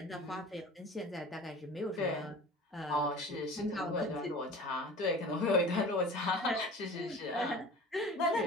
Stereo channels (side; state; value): both; normal; correlation 0.39